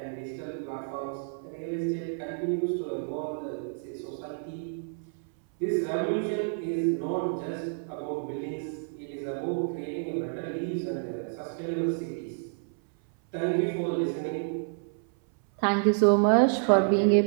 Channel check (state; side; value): silent; left; 58 dB below the other